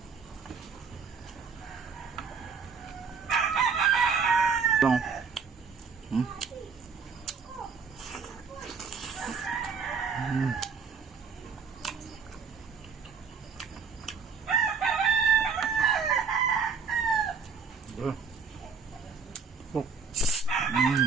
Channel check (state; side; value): quieter; left; 5.7 dB